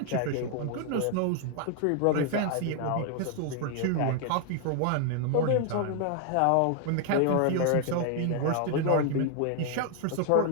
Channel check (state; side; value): different; both; correlation 0.00